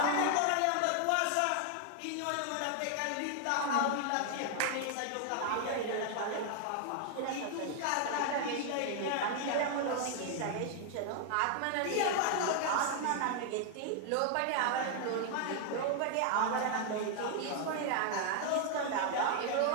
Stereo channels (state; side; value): different; both; correlation 0.00